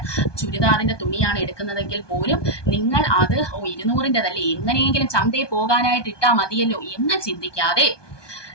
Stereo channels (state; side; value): late; right; 1.2 ms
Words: ചുരിദാറിന്റെ തുണിയാണ് എടുക്കുന്നതെങ്കിൽ പോലും നിങ്ങൾ അത് 200-ൻ്റെതല്ലേ, എങ്ങനെയെങ്കിലും ചന്തയിൽ പോകാനായിട്ട് ഇട്ടാൽ മതിയല്ലോ എന്ന് ചിന്തിക്കാതെ